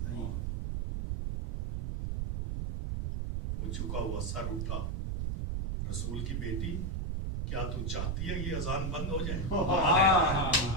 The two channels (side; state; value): right; noise; rumble, 1 dB below the sound